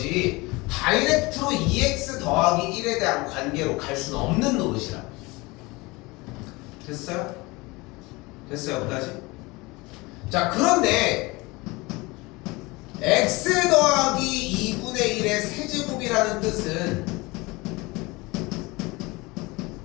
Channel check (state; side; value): quieter; right; 23.6 dB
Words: 다이렉트로 2x 더하기 1에 대한 관계로 갈 수는 없는 노릇이라. 됐어요? 됐어요? 여기까지? 자, 그런데 x 더하기 2분의 1의 세제곱이라는 뜻은